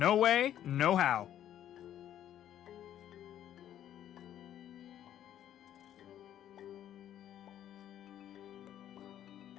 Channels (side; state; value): right; quieter; 11.2 dB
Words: way, no how.